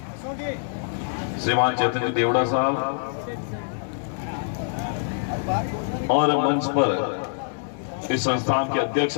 श्रीमान चैतन्य देवड़ा साहब और मंच पर इस संस्थान के अध्यक्ष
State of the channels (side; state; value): right; silent; 62 dB below the other